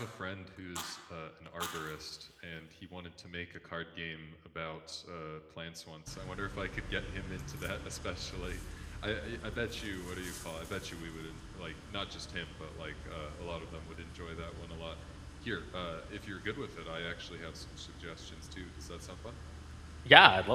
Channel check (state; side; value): identical; both; correlation 1.00